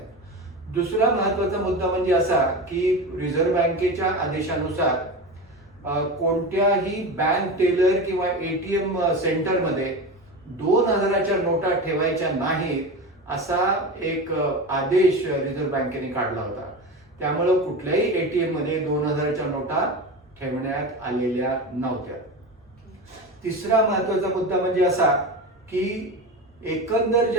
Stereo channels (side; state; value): both; normal; correlation 0.25